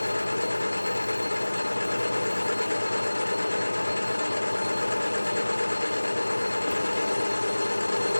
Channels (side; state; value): both; inverted; correlation -1.00